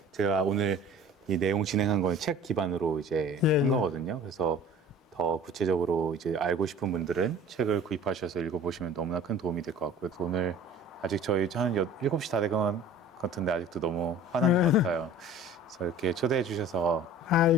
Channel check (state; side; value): normal; both; correlation 0.45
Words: 제가 오늘 이 내용 진행한 건 책 기반으로 이제 예, 한 예. 거거든요. 그래서 더 구체적으로 이제 알고 싶은 분들은 책을 구입하셔서 읽어보시면 너무나 큰 도움이 될 것 같고요. 오늘 아직 저희 한 7시 다 된 것 같은데 아직도 너무 화난 것 같아요. 그래서 이렇게 초대해 주셔서